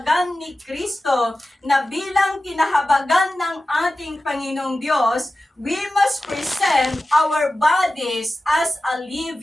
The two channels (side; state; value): both; normal; correlation 0.95